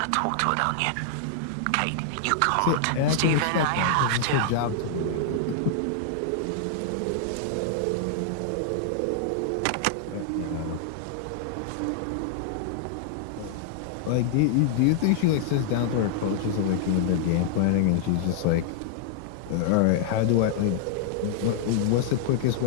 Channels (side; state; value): both; different; correlation -0.01